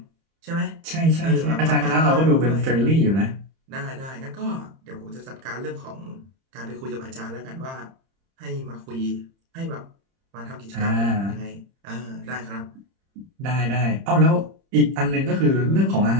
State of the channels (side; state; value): left; late; 30 ms